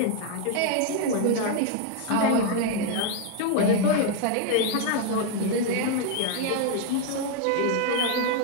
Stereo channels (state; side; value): different; both; correlation 0.01